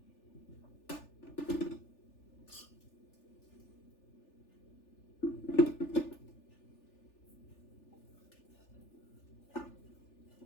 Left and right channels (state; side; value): late; right; 3.4 ms